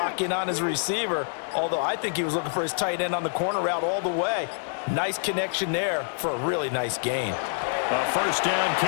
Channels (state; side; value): silent; right; digital silence